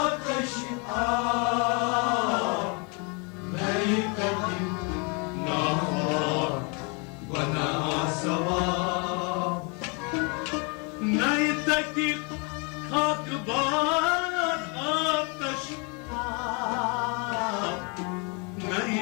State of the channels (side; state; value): right; quieter; 33.4 dB